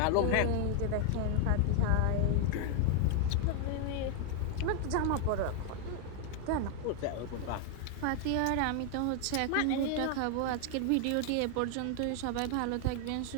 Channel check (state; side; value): different; both; correlation 0.00